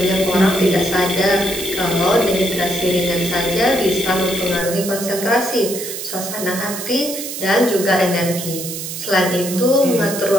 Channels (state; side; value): noise; right; hiss, 7 dB below the sound